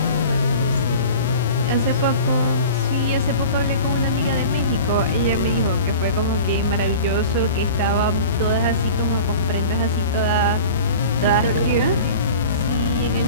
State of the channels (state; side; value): inverted; both; correlation -0.39